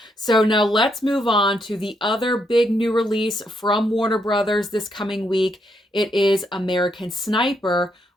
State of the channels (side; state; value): both; normal; correlation 0.77